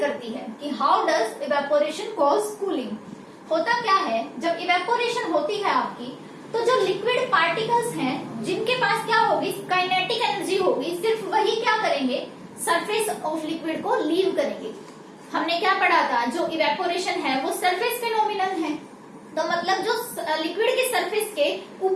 है, कि how does evaporation cause cooling. होता क्या है, जब इवेपोरेशन होती है आपकी, तो जो लिक्विड पार्टिकल्स हैं जिनके पास क्या होगी, काइनेटिक एनर्जी होगी, सिर्फ वही क्या करेंगे, सरफेस ऑफ लिक्विड को लीव करेंगे। हमने क्या पढ़ा था, जो इवेपोरेशन है वो सरफेस फिनोमिनन है। तो मतलब जो लिक्विड के सरफेस के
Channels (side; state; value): both; identical; correlation 1.00